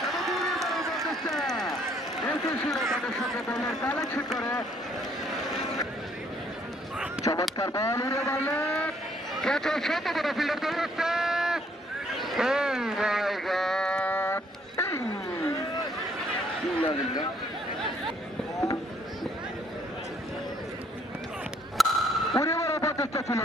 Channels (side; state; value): both; normal; correlation 0.65